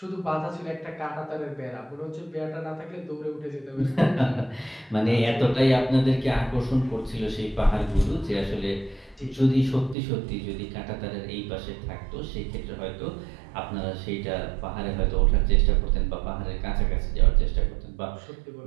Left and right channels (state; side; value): drops out; left; at 10.0 s